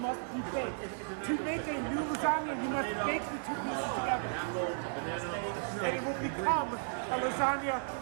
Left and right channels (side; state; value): left; silent; digital silence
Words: be baked. To make a new lasagna, you must bake the two pieces together. And it will become a lasagna.